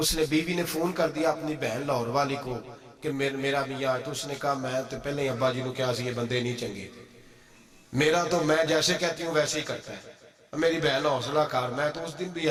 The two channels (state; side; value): identical; both; correlation 1.00